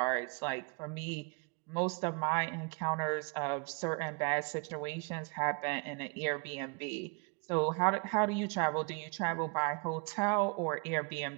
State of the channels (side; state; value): left; quieter; 33.6 dB